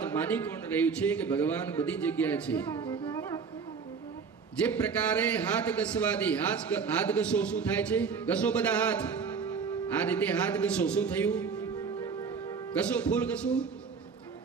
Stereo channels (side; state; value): left; quieter; 5.7 dB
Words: માની કોણ રહ્યું છે કે ભગવાન બધી જગ્યાએ છે. જે પ્રકારે હાથ ઘસવાથી હાથ ઘસો શું થાય છે? ઘસો બધા હાથ, આ રીતે હાથ ઘસો શું થયું? ઘસો ફૂલ ઘસો